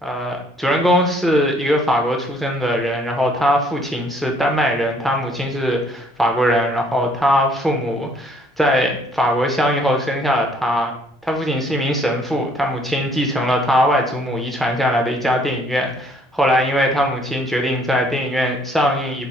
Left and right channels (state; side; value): normal; both; correlation 0.62